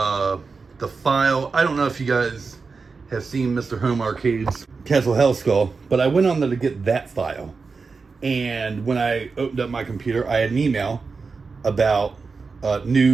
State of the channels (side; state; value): left; quieter; 4.6 dB